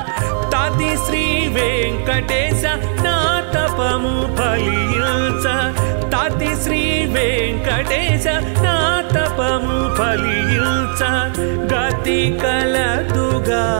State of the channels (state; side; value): silent; left; digital silence